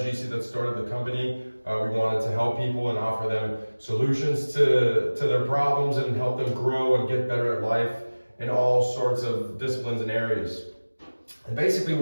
that started the company. We wanted to help people and offer them solutions to their problems and help them grow and get better at life in all sorts of disciplines and areas. And basically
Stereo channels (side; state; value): both; inverted; correlation -1.00